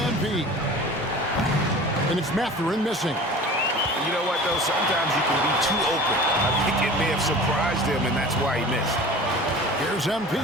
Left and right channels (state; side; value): normal; both; correlation 0.40